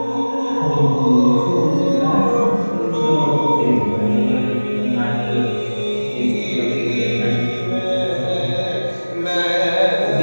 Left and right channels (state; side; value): inverted; both; correlation -1.00